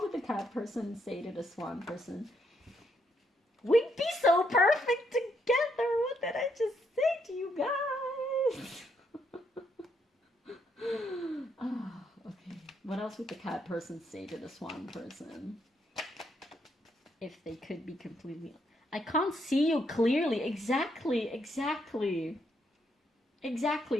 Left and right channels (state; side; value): normal; both; correlation 0.75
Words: would the cat person say to the swan person? We'd be so perfect together. What did I just say to you guys? Oh, okay. What else would the cat person say to the swan person? If they could be completely... I can't see you clearly. Exactly.